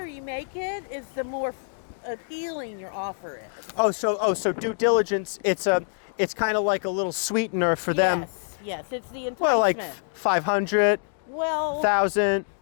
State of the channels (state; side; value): silent; right; digital silence